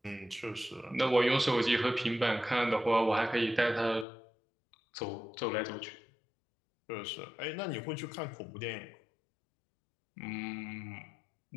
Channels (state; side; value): drops out; right; at 4.0 s